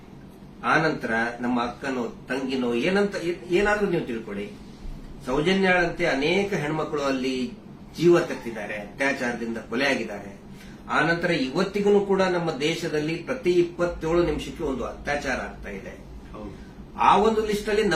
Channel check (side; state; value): both; identical; correlation 1.00